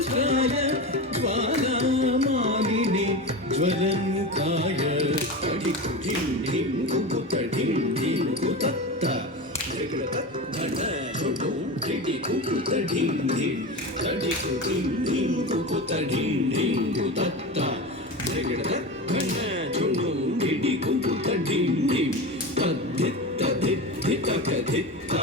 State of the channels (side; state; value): both; normal; correlation 0.24